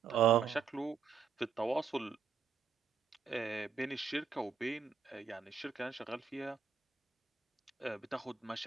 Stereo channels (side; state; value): left; quieter; 6.0 dB